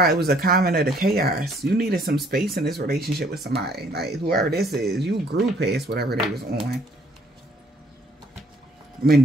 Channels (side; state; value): both; normal; correlation 0.63